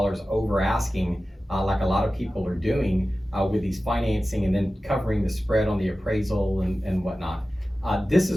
over asking, like a lot of people are doing with these financing and then covering the spread on the appraisal and whatnot. This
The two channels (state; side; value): normal; both; correlation 0.95